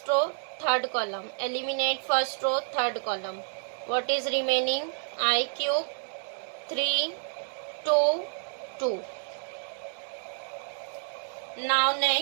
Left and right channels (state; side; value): silent; left; digital silence